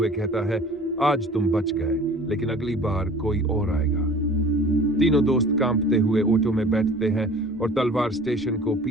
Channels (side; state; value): both; normal; correlation 0.45